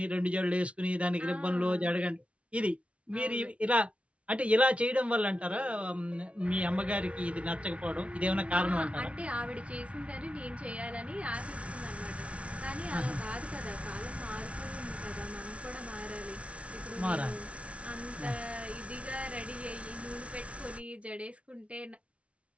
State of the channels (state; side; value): late; left; 0.062 ms